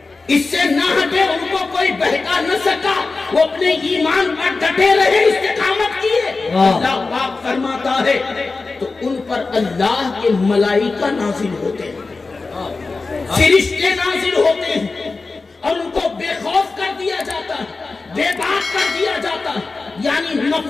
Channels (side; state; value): right; quieter; 3.9 dB